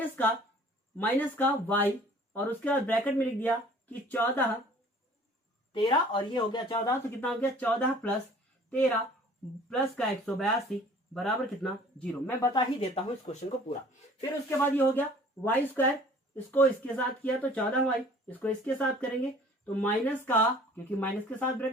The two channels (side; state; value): both; normal; correlation 0.51